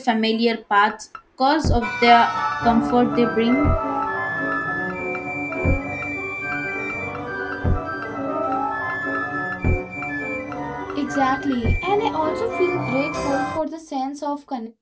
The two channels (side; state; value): both; identical; correlation 1.00